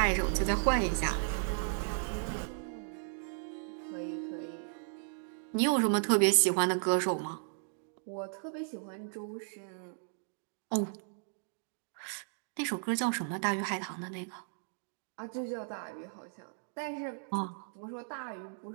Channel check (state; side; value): silent; left; digital silence